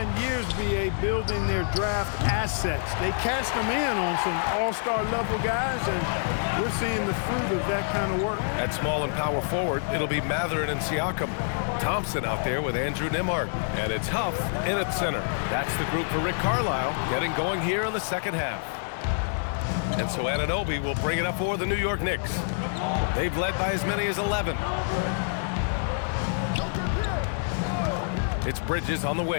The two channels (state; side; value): silent; right; digital silence